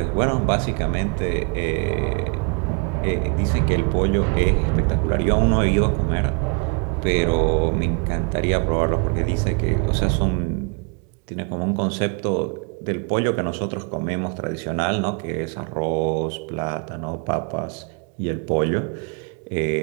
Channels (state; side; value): quieter; left; 33.4 dB